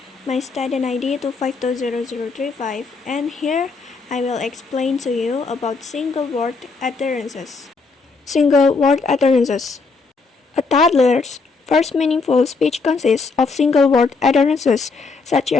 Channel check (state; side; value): quieter; right; 4.3 dB